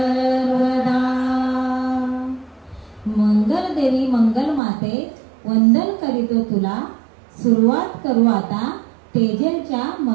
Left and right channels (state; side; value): drops out; left; at 4.6 s